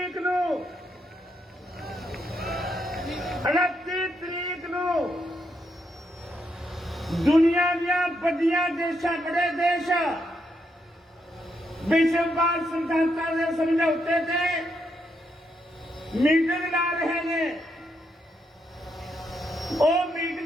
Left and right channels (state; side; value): normal; both; correlation 0.79